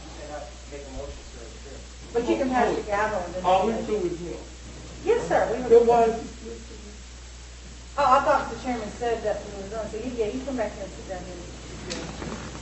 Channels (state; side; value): identical; both; correlation 1.00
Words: cannot make a motion, sir. But you can pass the gavel. and then- All we do is him. Yes, sir. We Then why were. is he Oh, I thought the chairman said that we were done. So you come back here and sit down here.